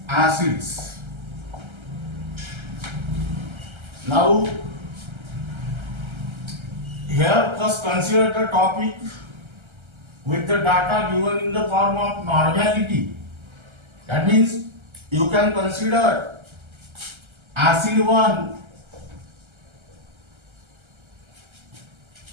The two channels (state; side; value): late; left; 1.3 ms